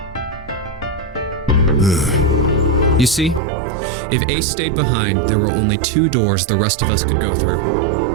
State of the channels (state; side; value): drops out; left; at 3.4 s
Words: You see, if Ace stayed behind, there were only 2 doors the rest of us could go through.